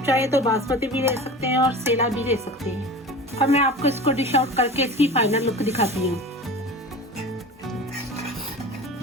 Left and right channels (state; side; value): normal; both; correlation 0.35